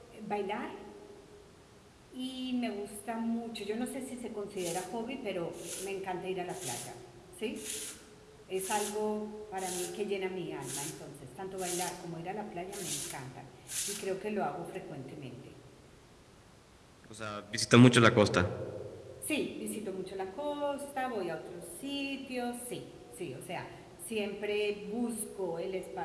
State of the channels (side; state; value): both; identical; correlation 1.00